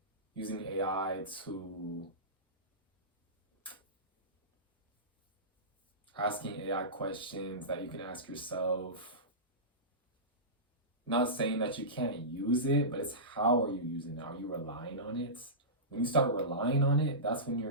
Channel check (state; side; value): normal; both; correlation -0.20